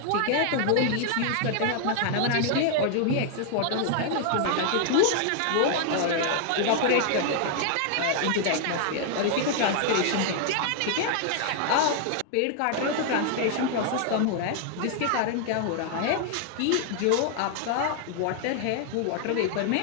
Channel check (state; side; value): different; both; correlation 0.00